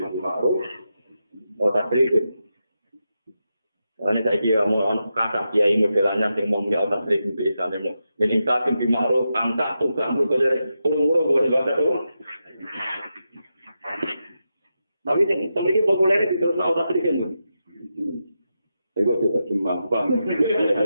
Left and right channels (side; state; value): both; inverted; correlation -0.88